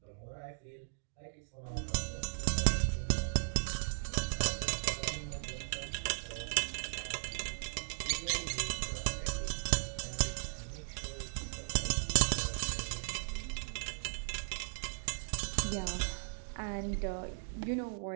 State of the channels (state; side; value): silent; left; digital silence